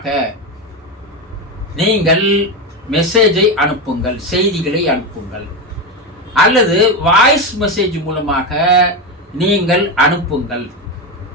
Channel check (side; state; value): both; normal; correlation 0.14